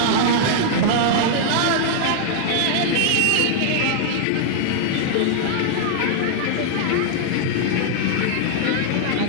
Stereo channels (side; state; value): both; different; correlation -0.01